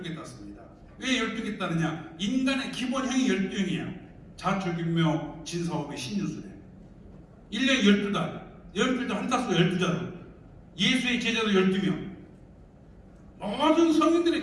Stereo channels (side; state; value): both; identical; correlation 1.00